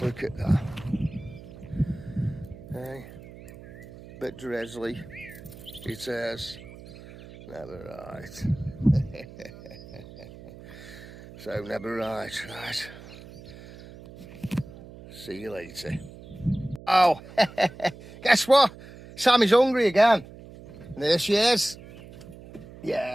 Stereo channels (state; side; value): noise; right; hum, 17 dB below the sound